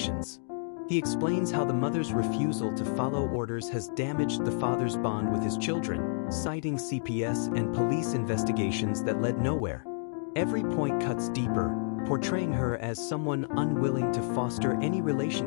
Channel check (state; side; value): silent; right; digital silence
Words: He explains how the mother's refusal to follow orders has damaged the father's bond with his children, citing CPS and police investigations that led nowhere. Every point cuts deeper, portraying her as someone unwilling to foster any